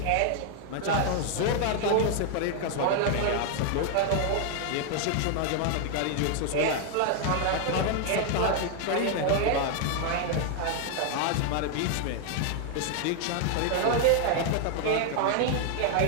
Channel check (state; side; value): different; both; correlation 0.00